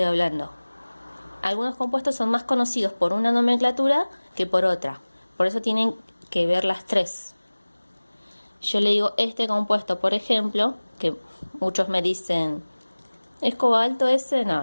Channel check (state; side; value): inverted; both; correlation -1.00